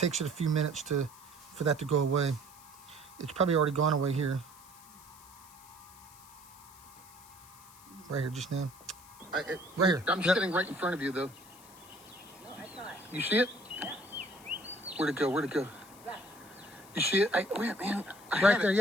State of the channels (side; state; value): left; noise; hiss, 21 dB below the sound